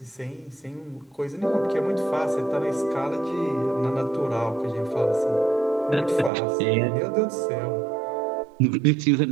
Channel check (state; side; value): drops out; left; at 6.3 s